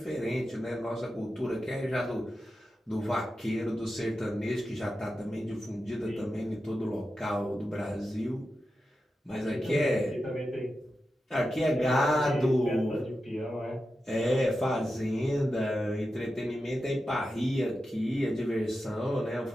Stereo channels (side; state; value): both; normal; correlation 0.91